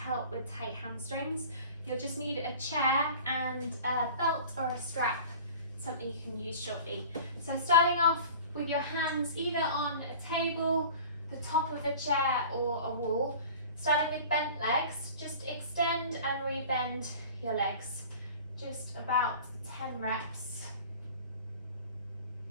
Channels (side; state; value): both; inverted; correlation -0.41